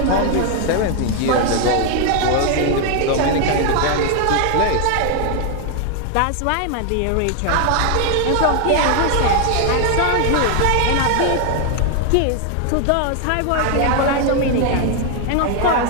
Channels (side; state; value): both; different; correlation 0.00